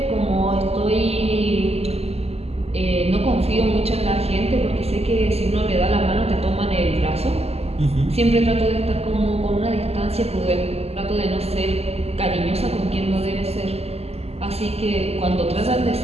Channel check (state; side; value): late; left; 0.29 ms